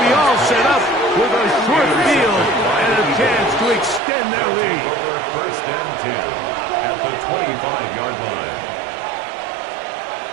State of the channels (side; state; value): left; drops out; at 4.0 s